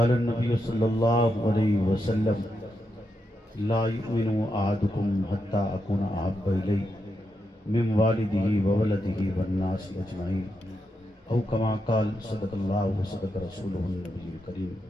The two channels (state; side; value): normal; both; correlation 0.84